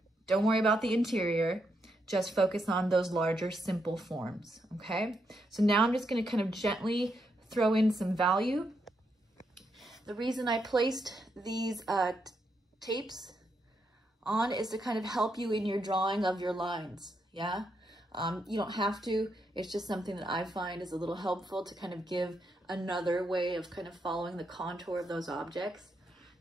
don't worry about the interior, just focus on those larger simple forms, okay? So now I'm just gonna kind of gently throw in some value. The reason I placed these tapes on is to kind of help you in your drawing of your lines, yeah? You don't have to, it's just something that I find is a little helpful to kind of give another way of kind of following the contour of those objects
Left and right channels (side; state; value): both; normal; correlation 0.80